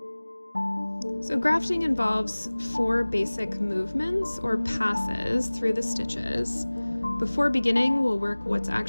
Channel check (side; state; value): both; inverted; correlation -1.00